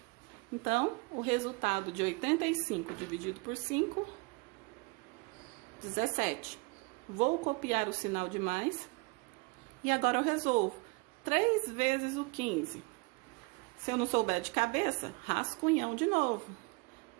Então, o resultado de 85 dividido por 5, 17. Vou copiar o sinal de mais. E agora eu resolvo. 3 vezes o 15. Se eu não souber de cabeça, rascunhão de novo.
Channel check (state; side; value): quieter; left; 27.9 dB